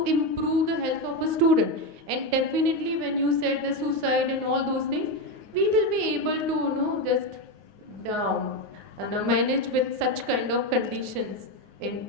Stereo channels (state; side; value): late; left; 9.5 ms